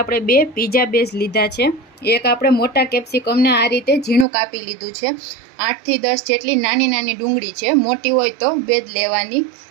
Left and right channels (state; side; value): drops out; left; at 4.2 s